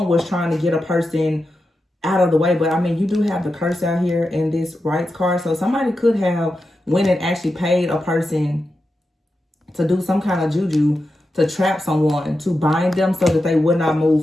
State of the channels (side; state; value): both; normal; correlation 0.90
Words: was trying to get a person out of the way. But I mean, you do have the curse out here in this rights card. So somebody could have went and actually paid a person to do some kind of juju, to trap someone, to bind them so that they would not